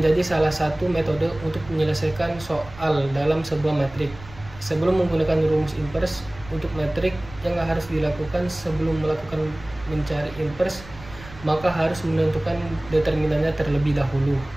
salah satu metode untuk menyelesaikan soal dalam sebuah metrik. Sebelum menggunakan rumus inverse untuk metrik, yang harus dilakukan sebelum melakukan mencari inverse, maka harus menentukan determinannya terlebih dahulu.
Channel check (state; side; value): noise; right; rumble, 17 dB below the sound